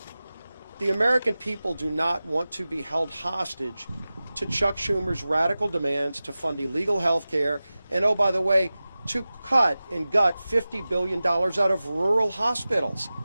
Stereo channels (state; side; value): inverted; both; correlation -0.96